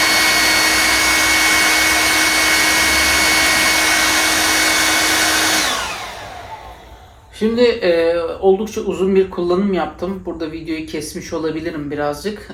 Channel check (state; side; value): identical; both; correlation 1.00